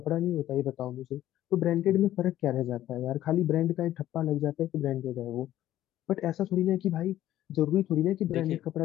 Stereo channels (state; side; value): quieter; right; 13.2 dB